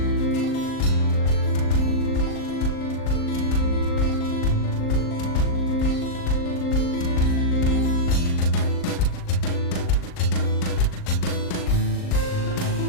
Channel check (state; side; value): late; right; 39 ms